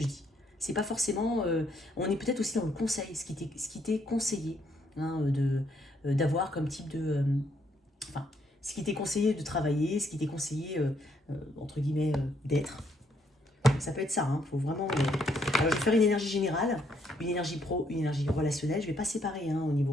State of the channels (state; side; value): normal; both; correlation 0.72